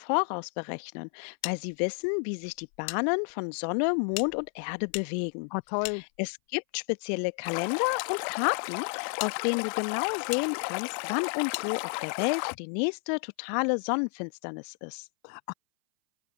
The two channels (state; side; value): silent; right; 57 dB below the other